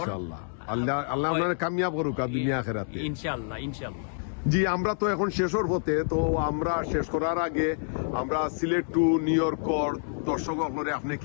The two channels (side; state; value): right; silent; digital silence